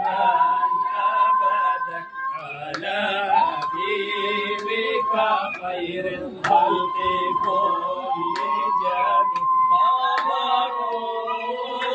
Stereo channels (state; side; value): identical; both; correlation 1.00